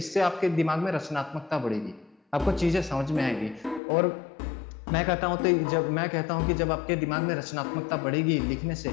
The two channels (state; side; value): drops out; right; at 3.8 s